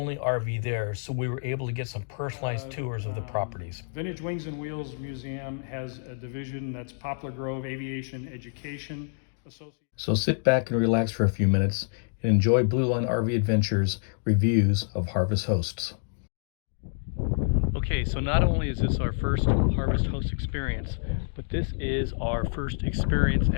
RV there, so we were able to get some personalized tours of the properties. Vintage Wings and Wheels Museum has a division that's Poplar Grove Aviation Education Association. So sit back and relax for a few minutes and enjoy Blue Line RV Adventures reviews of Harvest Hosts. Okay, so not only is this our first Harvest Host experience, but this is our first experience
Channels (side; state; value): right; silent; digital silence